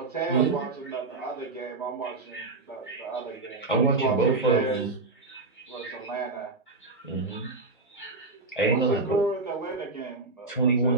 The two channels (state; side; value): quieter; left; 3.5 dB